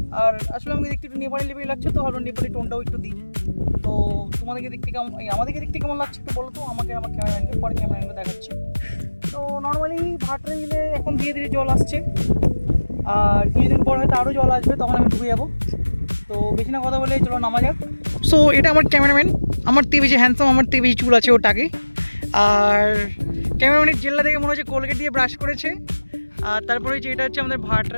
আর আসলে আমাকে দেখতে একটু নেপালি লেভেল লাগছে, তো ভালো নেপালি টোনটাও একটু দিই। তো তোমাদেরকে দেখতে কেমন, আমাদেরকে দেখতে কেমন লাগছে একটু বলো তো আমাকে, আমার ক্যামেরাম্যানকে, পরে ক্যামেরাম্যানকে দেখাচ্ছি। তো নর্মালি ভাটরা বিলে এখন ধীরে ধীরে জল আসছে, আর কিছুদিন পর হয়তো আরও জল আসবে, তখন আমি ডুবে যাবো। তো বেশি না কথা বলে চলো নামা যাক। সো এটা আমার ক্যামেরাম্যান, আমার থেকে বেশি হ্যান্ডসাম, আমার থেকে বেশি চুল আছে ওটাকে। আর ক্যামেরাম্যানের জেল্লা থেকে মনে হচ্ছে কোলগেট দিয়ে ব্রাশ করেছে। আর তারপরে হচ্ছে এটা হচ্ছে আমাদের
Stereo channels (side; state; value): both; inverted; correlation -1.00